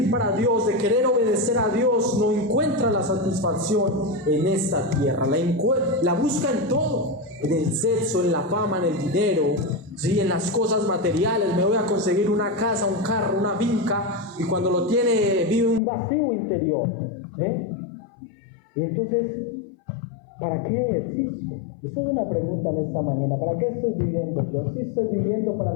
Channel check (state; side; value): drops out; right; at 15.8 s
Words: para Dios, de querer obedecer a Dios, no encuentra la satisfacción en esta tierra. La busca en todo, en el sexo, en la fama, en el dinero, ¿sí? En las cosas materiales. Me voy a conseguir una casa, un carro, una finca, y cuando lo tiene vive un vacío interior, Y entonces, ¿para qué existo? Esa es una pregunta en esta mañana. ¿Para qué estoy viviendo yo? Sí, estoy viviendo para